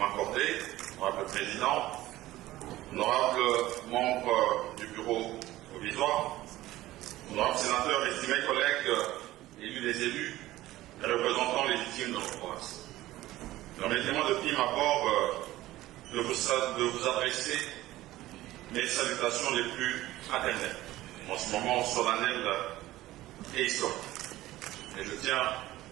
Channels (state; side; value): quieter; left; 16.2 dB